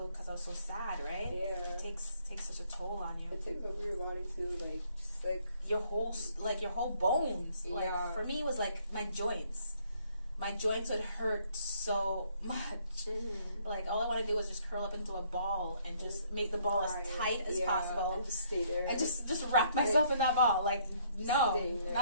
because I was so sad, right? Yeah. It takes such a toll on you. It takes over your body too, like just like your whole bones. Like for me, it was like my joints. My joints would hurt so much. Like all I want to do was just curl up into a ball and just make the ball as tight as possible and just stay there and just wrap myself in that ball. Like no,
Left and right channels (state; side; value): inverted; both; correlation -0.65